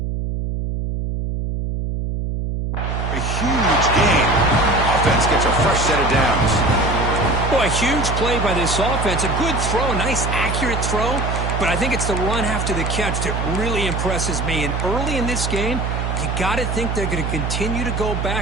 A huge gain. Offense gets a fresh set of downs. Boy, a huge play by this offense. A good throw, a nice accurate throw. But I think it's the run after the catch that really impresses me. And early in this game, you got to think they're going to continue to go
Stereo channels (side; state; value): right; noise; hum, 2 dB below the sound